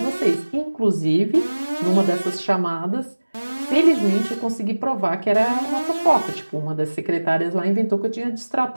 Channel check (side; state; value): both; inverted; correlation -1.00